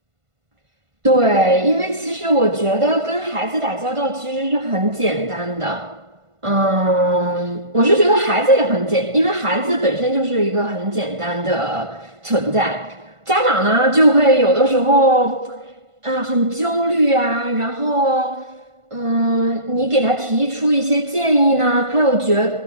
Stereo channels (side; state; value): left; late; 1.5 ms